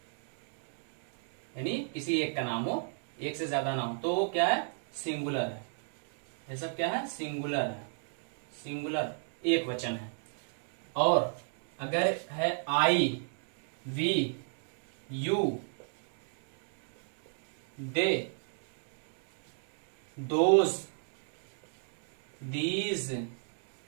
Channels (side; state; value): left; silent; 55 dB below the other